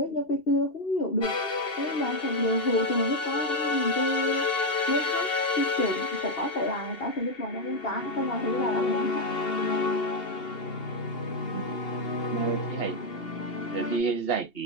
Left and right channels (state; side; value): late; right; 2.8 ms